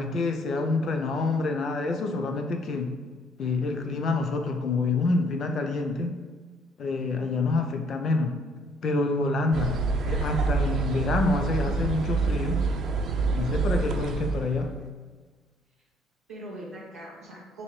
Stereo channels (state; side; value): normal; both; correlation 0.63